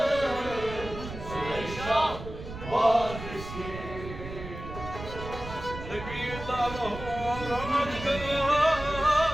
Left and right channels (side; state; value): right; noise; rumble, 11 dB below the sound